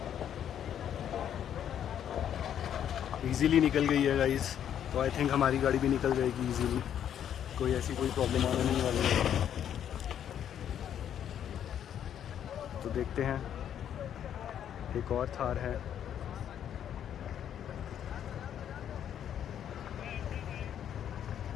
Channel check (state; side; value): quieter; right; 9.6 dB